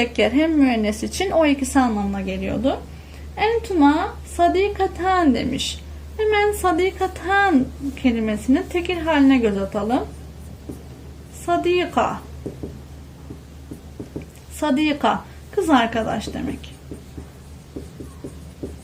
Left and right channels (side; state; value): both; identical; correlation 1.00